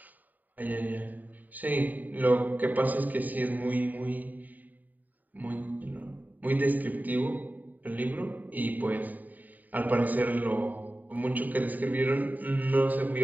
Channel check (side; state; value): left; late; 0.084 ms